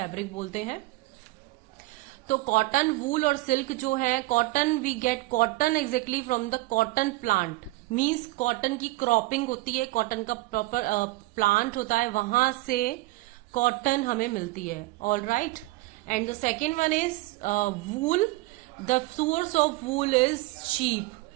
बोलते हैं. तो कॉटन, वूल और सिल्क जो है, cotton we get cotton exactly from the cotton plant. Means cotton की क्रॉपिंग होती है, कॉटन का प्रॉपर प्लांट होता है, वहां से कॉटन हमें मिलती है. All right. And the second one is wool. The source of wool is sheep.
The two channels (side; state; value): left; quieter; 20.7 dB